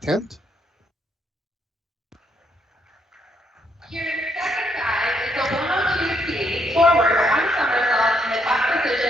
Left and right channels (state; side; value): normal; both; correlation 0.74